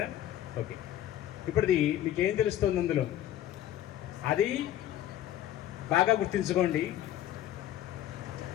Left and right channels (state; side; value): quieter; right; 12.2 dB